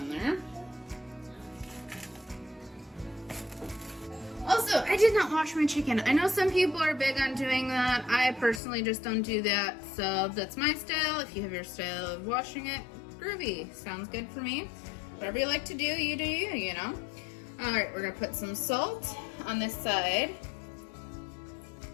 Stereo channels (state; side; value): drops out; right; at 8.6 s